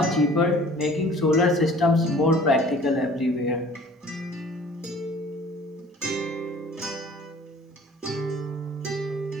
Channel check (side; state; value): both; normal; correlation 0.49